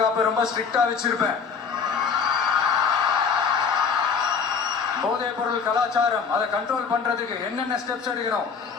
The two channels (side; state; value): right; quieter; 5.9 dB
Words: ரொம்ப ஸ்ட்ரிக்டா வச்சிருப்பேன். போதைப் பொருள் கலாச்சாரம் அதை கண்ட்ரோல் பண்றதுக்கு என்னென்ன ஸ்டெப்ஸ் எடுக்கணும்,